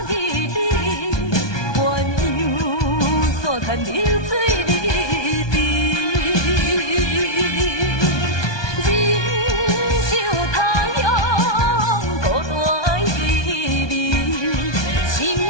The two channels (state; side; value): late; right; 1.2 ms